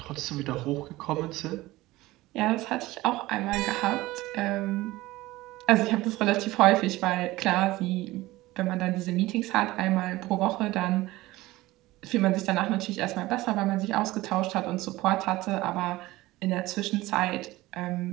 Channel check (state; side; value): quieter; left; 18.5 dB